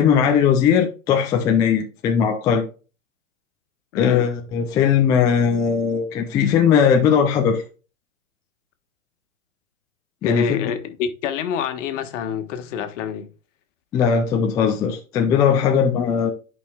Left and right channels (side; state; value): right; quieter; 7.1 dB